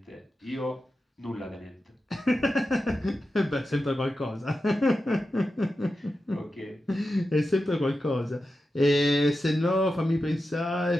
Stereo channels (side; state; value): both; normal; correlation 0.91